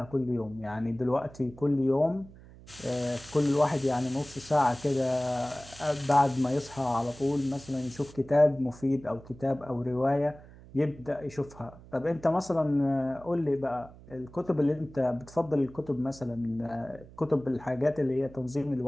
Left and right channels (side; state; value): right; noise; hum, 20 dB below the sound